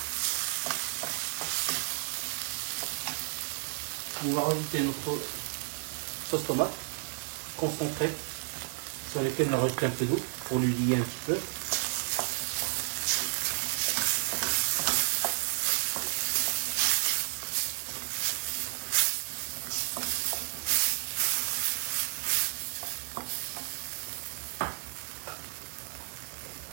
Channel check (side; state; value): left; silent; 56 dB below the other